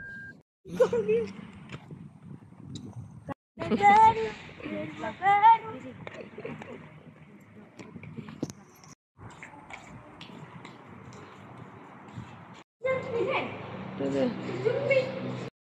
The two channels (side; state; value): both; identical; correlation 1.00